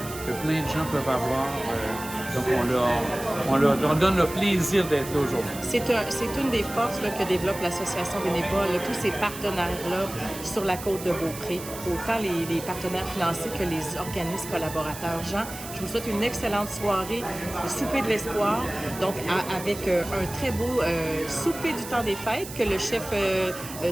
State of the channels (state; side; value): noise; right; hiss, 12 dB below the sound